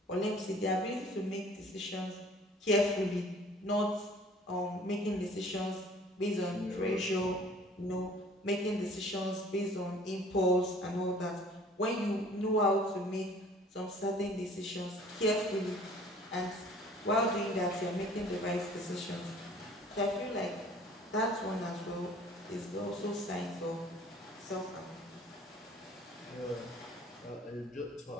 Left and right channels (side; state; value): both; normal; correlation 0.52